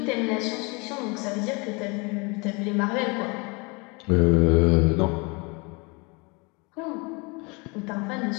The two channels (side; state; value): right; quieter; 29.2 dB